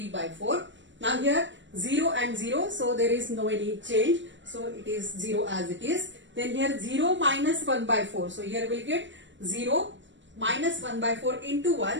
by 4. Now here 0 and 0, so there is no any change. So it is 0 as it is. Then here 0 minus 1 by 4. So here we will get 0 minus 1 by 4 into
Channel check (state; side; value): late; left; 0.54 ms